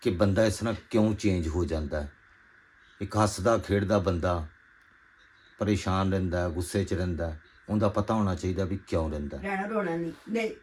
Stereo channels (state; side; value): identical; both; correlation 1.00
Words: ਕਿ ਬੰਦਾ ਇਸ ਤਰ੍ਹਾਂ ਕਿਉਂ ਚੇਂਜ ਹੋ ਜਾਂਦਾ ਹੈ। ਇੱਕ ਹੱਸਦਾ ਖੇਡਦਾ ਬੰਦਾ ਪਰੇਸ਼ਾਨ ਰਹਿੰਦਾ, ਗੁੱਸੇ 'ਚ ਰਹਿੰਦਾ, ਉਹਦਾ ਪਤਾ ਹੋਣਾ ਚਾਹੀਦਾ ਵੀ ਕਿਉਂ ਰਹਿੰਦਾ। ਰਹਿਣਾ ਰੋਣਾ ਨਹੀਂ।